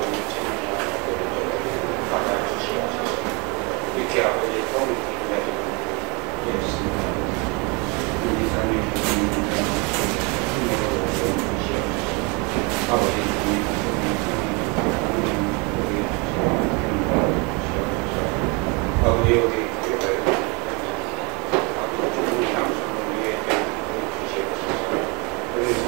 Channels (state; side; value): quieter; left; 30.2 dB